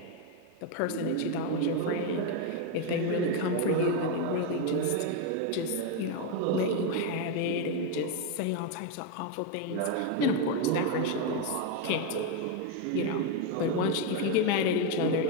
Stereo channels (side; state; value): both; different; correlation 0.02